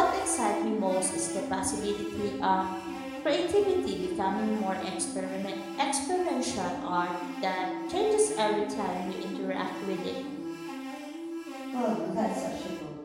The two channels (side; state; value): both; identical; correlation 1.00